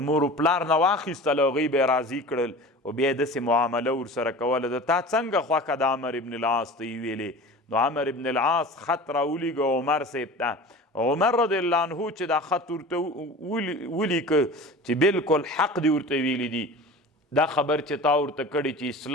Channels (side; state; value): both; normal; correlation 0.37